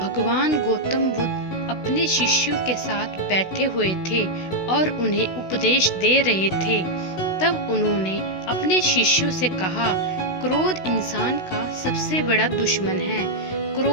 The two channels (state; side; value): late; right; 16 ms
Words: गौतम बुद्ध अपने शिष्यों के साथ बैठे हुए थे और उन्हें उपदेश दे रहे थे। तब उन्होंने अपने शिष्यों से कहा, क्रोध इंसान का सबसे बड़ा दुश्मन है।